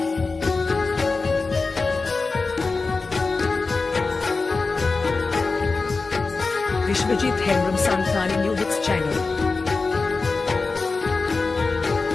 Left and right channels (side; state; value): right; quieter; 4.0 dB